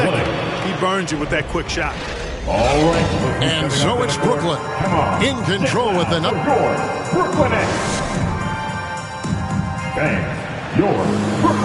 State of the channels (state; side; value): identical; both; correlation 1.00